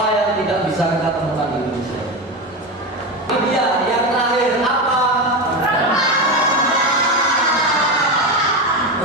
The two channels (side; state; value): both; normal; correlation 0.18